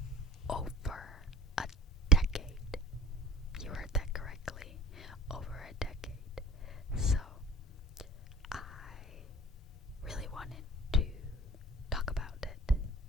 over a decade. You heard that correctly, over a decade. So, I really wanted to talk about it,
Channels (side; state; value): both; normal; correlation 0.41